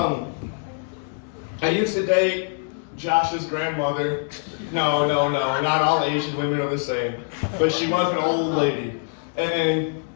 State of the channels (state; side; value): silent; right; 56 dB below the other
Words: I used to date Josh's grandmother. No, not all Asian women are the same. But she was an old lady. And